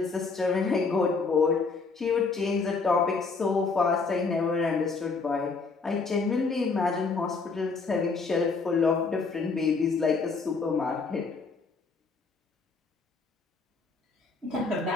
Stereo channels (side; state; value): right; quieter; 4.4 dB